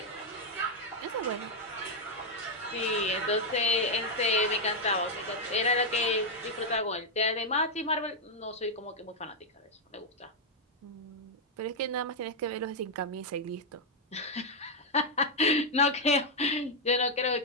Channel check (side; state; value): both; normal; correlation -0.01